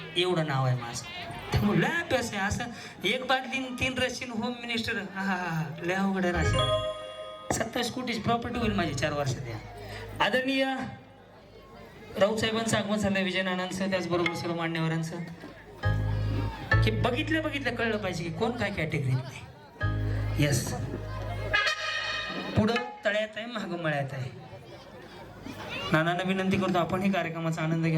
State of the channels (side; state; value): both; identical; correlation 1.00